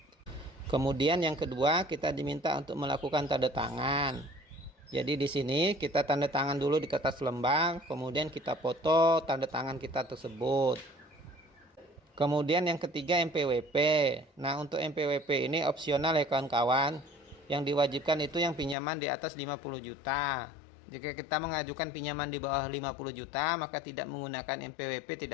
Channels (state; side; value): drops out; right; at 18.8 s